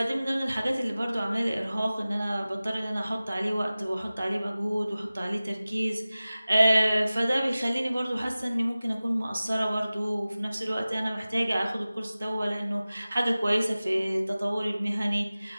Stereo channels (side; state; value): both; inverted; correlation -0.97